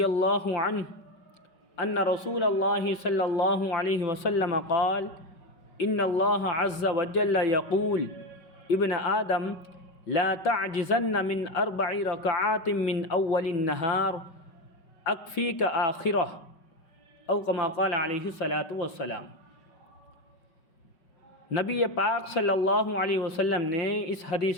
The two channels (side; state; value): right; late; 5.4 ms